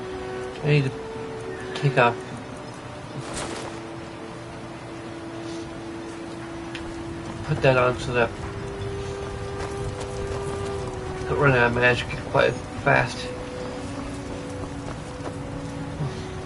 I need to take off. Put that on so that I don't run out of magic quite fast.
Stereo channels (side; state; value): both; identical; correlation 1.00